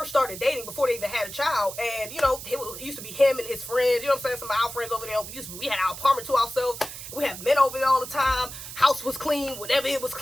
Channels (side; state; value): right; noise; hiss, 11 dB below the sound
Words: started dating before they even had a child, and, you know, it used to be him and his friends, you know what I'm saying, some of our friends over there, we had our apartment to ourselves, we had men over there all the time, house was clean, whenever it was